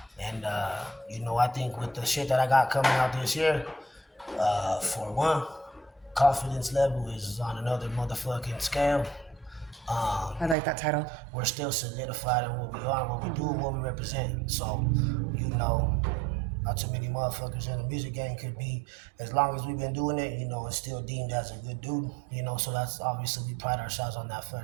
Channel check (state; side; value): drops out; left; at 10.6 s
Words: And, I think with the shit that I got coming out this year, for one, confidence level is on another motherfucking scale. I like that title. We're still solidified in what we are, what we do, and what we represent. So, not too many motherfuckers in the music game could be, as long as we've been doing it, it's still deemed as a good dude, so that's obviously we pride ourselves on that